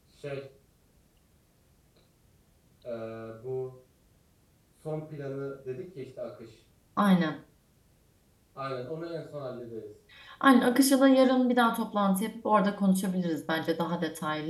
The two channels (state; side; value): identical; both; correlation 1.00